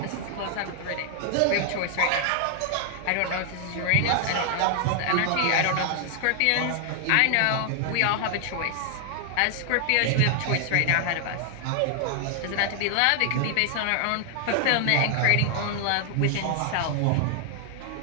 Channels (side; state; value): both; different; correlation 0.00